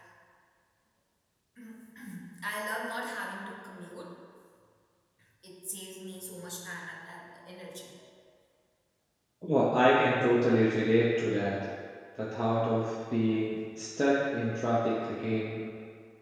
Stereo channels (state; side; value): identical; both; correlation 1.00